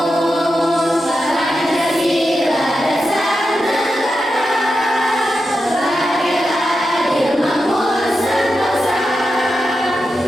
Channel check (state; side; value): normal; both; correlation 0.89